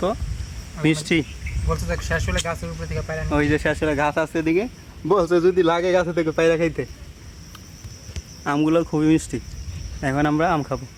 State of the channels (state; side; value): identical; both; correlation 1.00